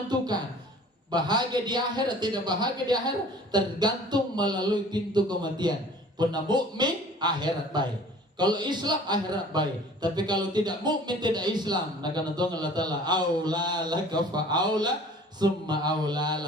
bahagia di akhirat tidak bahagia di akhirat tergantung melalui pintu kematian. Pernah mukmin akhirat baik, kalau Islam akhirat baik, tapi kalau tidak mukmin tidak Islam, maka nanti Allah Taala aula laka fa aula summa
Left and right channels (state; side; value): normal; both; correlation 0.48